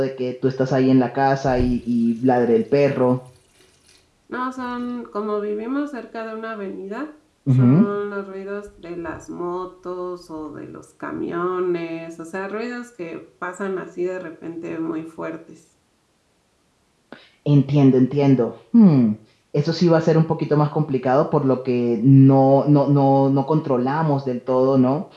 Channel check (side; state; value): both; identical; correlation 1.00